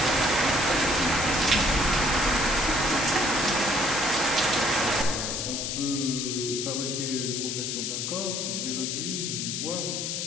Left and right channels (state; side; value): noise; left; hiss, 2 dB below the sound